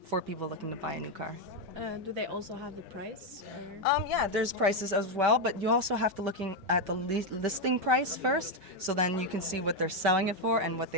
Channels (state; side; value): late; left; 5.2 ms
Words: for people looking to buy a new car. Do they also have the price? Yeah, there's prices as well, but you also have to look at the listing price first, so then you can see what they're selling it for and what